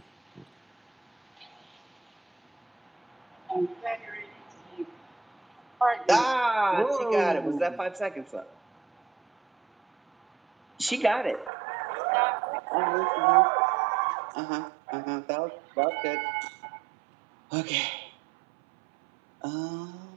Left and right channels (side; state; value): left; drops out; at 11.5 s